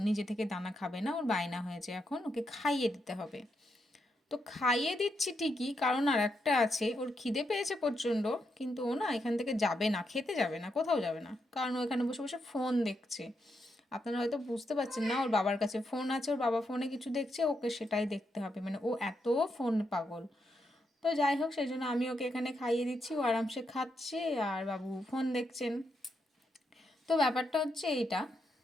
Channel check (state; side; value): normal; both; correlation 0.81